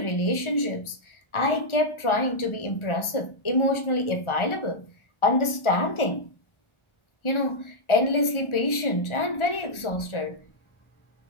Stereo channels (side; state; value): right; late; 1.4 ms